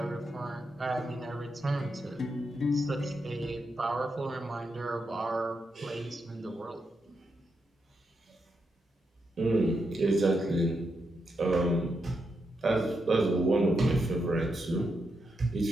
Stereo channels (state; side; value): normal; both; correlation 0.84